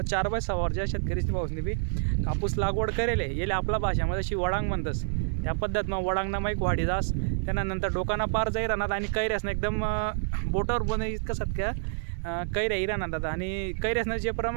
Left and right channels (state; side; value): silent; left; digital silence